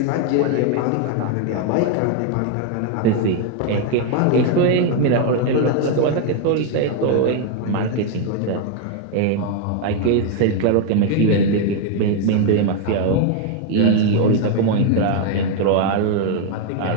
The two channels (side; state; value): both; different; correlation 0.01